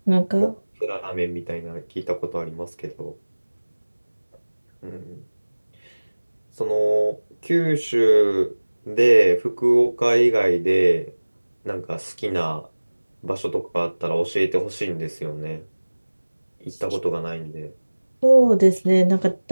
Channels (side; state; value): both; inverted; correlation -1.00